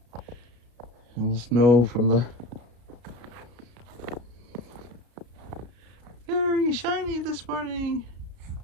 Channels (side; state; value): left; late; 33 ms